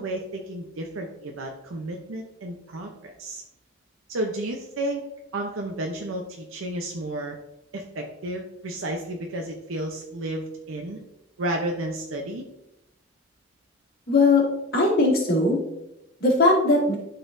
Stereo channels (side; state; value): both; normal; correlation 0.26